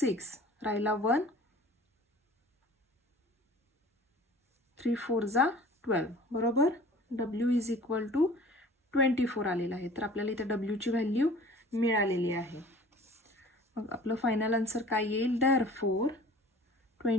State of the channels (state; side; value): normal; both; correlation 0.46